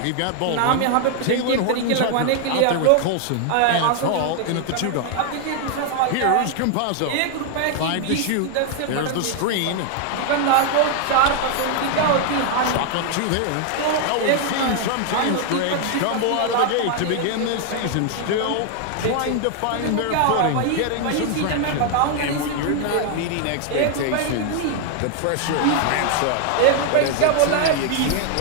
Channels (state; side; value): different; both; correlation 0.00